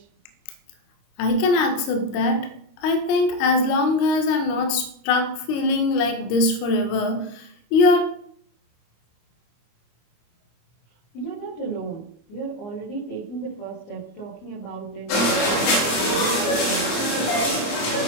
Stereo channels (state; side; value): late; right; 25 ms